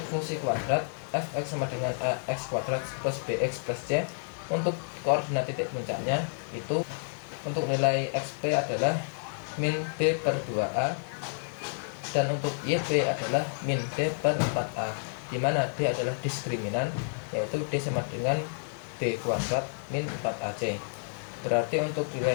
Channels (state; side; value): silent; right; digital silence